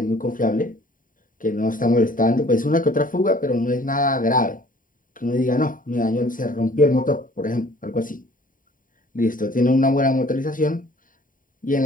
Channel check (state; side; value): late; right; 0.39 ms